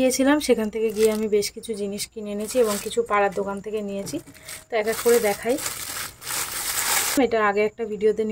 সেখান থেকে গিয়ে আমি বেশ কিছু জিনিস কিনে এনেছি এবং কিছু পাড়ার দোকান থেকে নিয়েছি। তো এক এক করে দেখাই। এটা আগে একটা ভিডিওতে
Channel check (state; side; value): identical; both; correlation 1.00